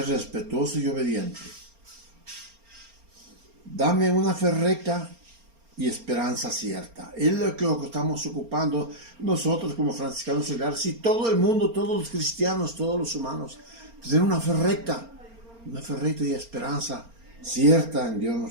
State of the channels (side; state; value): left; late; 4.3 ms